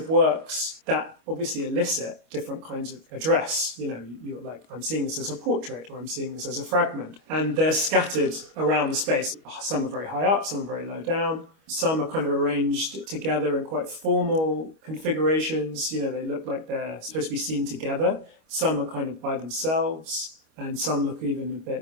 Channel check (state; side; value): late; left; 25 ms